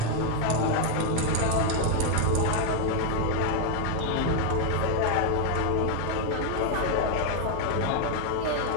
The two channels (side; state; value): both; different; correlation 0.01